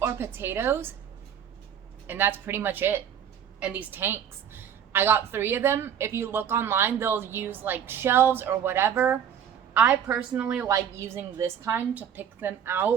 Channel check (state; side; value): quieter; left; 8.6 dB